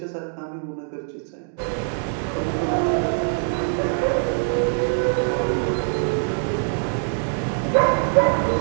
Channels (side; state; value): left; silent; digital silence